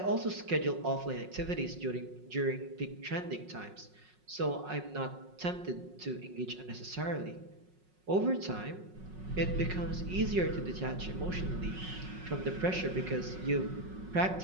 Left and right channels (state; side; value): late; left; 5.5 ms